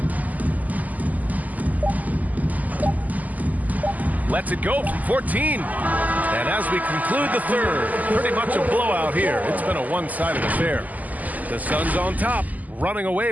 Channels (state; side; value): late; left; 0.079 ms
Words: Lets it go from 14. And as we conclude the third, pretty much a blowout here. It's been a one-sided affair. The Suns on top, running away